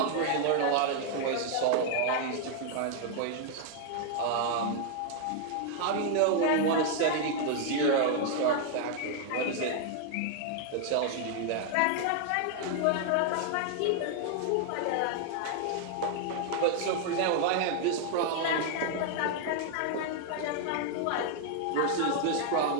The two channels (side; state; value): both; different; correlation 0.00